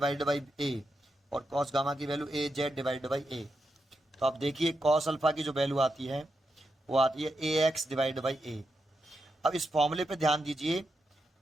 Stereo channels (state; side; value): normal; both; correlation 0.85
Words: by A, और कॉस गामा की value A Z divide by A. तो आप देखिए कॉस अल्फा की जो वैल्यू आती है वो आती है ए एक्स डिवाइड बाई ए। अब इस फॉर्मूले पे ध्यान दीजिए,